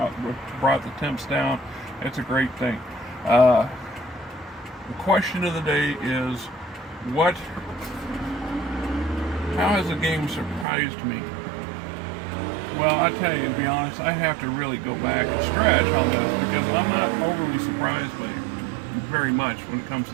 brought the temps down. It's a great thing. The question of the day is, how has the game surprised me? Well, I tell you, to be honest, I have to really go back and stretch on this because I'm not overly surprised by it very much when it comes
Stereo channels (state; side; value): drops out; left; at 10.7 s